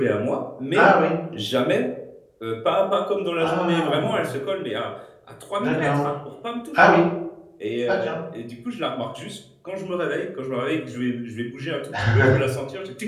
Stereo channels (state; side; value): identical; both; correlation 1.00